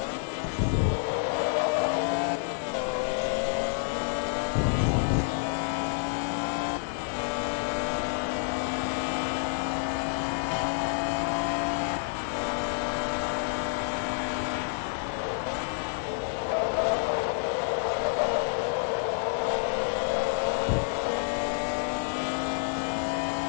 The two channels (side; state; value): right; silent; digital silence